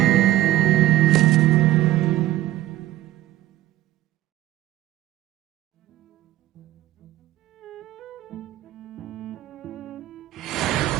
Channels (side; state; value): left; quieter; 14.7 dB